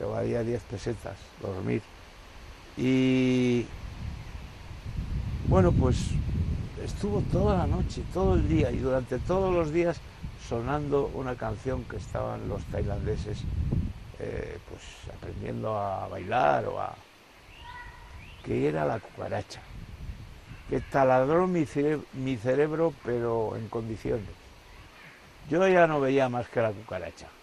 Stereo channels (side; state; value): both; identical; correlation 1.00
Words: valía 10 pesetas, dormir. Y bueno, pues estuvo toda la noche, todo el día y durante todos los días sonando una canción que estaban los tailandeses pues aprendiendo a bailar que era la cucaracha, que taladró mi cerebro pero en condiciones. Yo ya no veía más que la cucaracha.